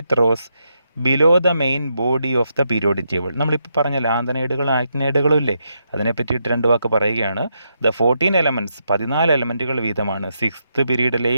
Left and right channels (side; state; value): both; inverted; correlation -0.81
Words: rows below the main body of the periodic table. നമ്മളിപ്പോൾ പറഞ്ഞ ലാന്തനൈഡുകളും ആക്ടിനൈഡുകളും ഇല്ലേ, അതിനെ പറ്റിയിട്ട് 2 വാക്ക് പറയുകയാണ്. The 14 elements 14 എലമെൻറ്റുകൾ വീതമാണ് 6th